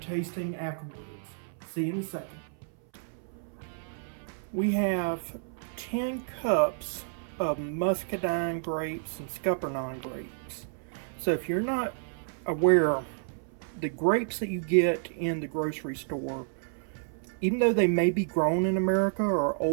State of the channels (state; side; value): silent; left; 58 dB below the other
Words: afterwards. See you in a second. We have 10 cups of Muscadine grapes and Scuppernog grapes. So if you're not aware, the grapes that you get in the grocery store, even though they may be grown in America, are